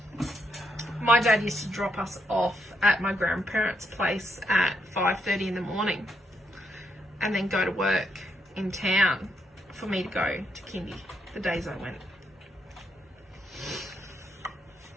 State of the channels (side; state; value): both; normal; correlation 0.79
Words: My dad used to drop us off at my grandparents' place at 5:30 in the morning and then go to work in town for me to go to kindy the days I went.